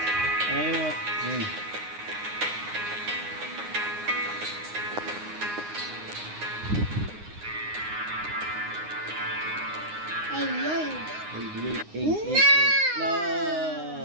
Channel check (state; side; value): late; left; 9.7 ms